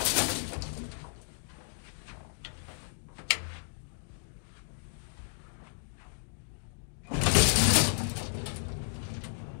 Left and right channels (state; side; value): silent; right; digital silence